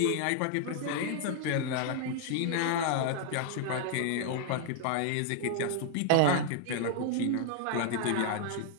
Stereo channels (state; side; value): different; both; correlation -0.01